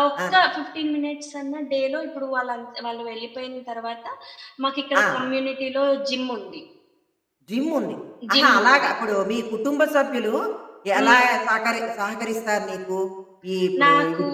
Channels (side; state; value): both; identical; correlation 1.00